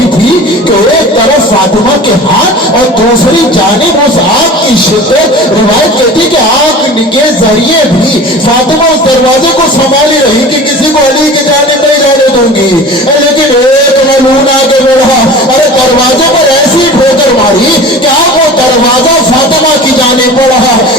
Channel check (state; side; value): normal; both; correlation 0.38